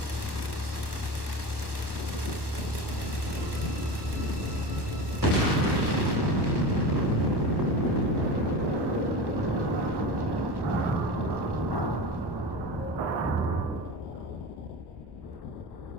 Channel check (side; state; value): left; late; 1.2 ms